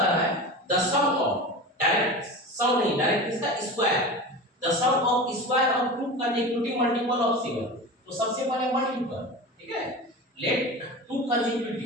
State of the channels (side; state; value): both; normal; correlation 0.30